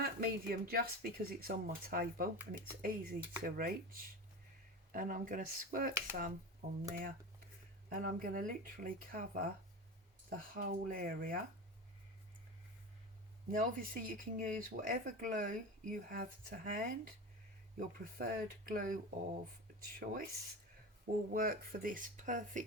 medium just because it's on my table and it's easy to reach. And I'm going to squirt some on there, and I'm going to literally cover the whole area. Now obviously you can use whatever glue you have to hand. Your preferred glue of choice will work for this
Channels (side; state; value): both; normal; correlation 0.27